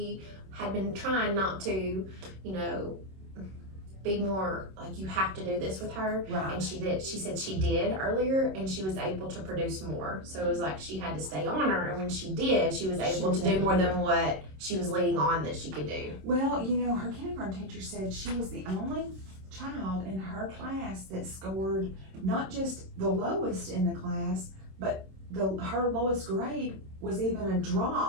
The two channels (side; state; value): left; late; 26 ms